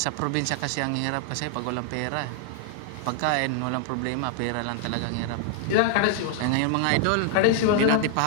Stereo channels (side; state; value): both; different; correlation 0.00